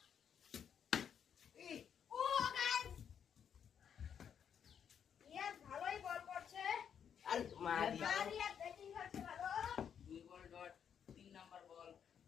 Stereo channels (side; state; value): right; quieter; 8.1 dB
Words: ও গাইস ইয়াস ভালোই বল করছে। আর মারি মারিয়া ব্যাটিং করছে ভালো। 2 ball dot 3 number ball.